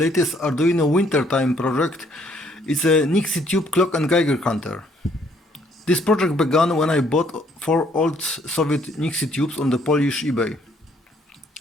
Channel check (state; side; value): normal; both; correlation 0.66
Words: Arduino wintertime project. It's a Nixie Tube Clock and Geiger Counter. This project began when I bought 4 old Soviet Nixie Tubes on the Polish eBay.